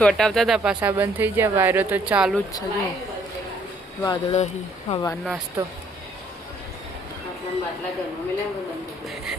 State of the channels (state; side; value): normal; both; correlation 0.64